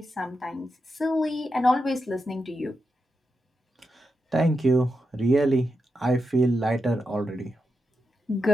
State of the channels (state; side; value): normal; both; correlation 0.86